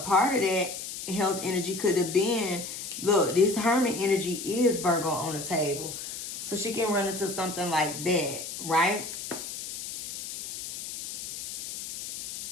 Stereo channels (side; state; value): left; noise; hiss, 8 dB below the sound